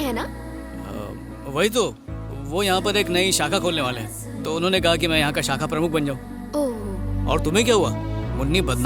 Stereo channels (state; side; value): identical; both; correlation 1.00